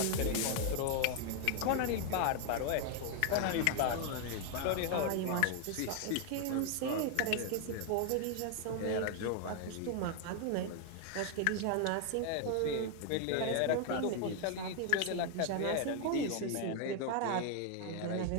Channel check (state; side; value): different; both; correlation 0.00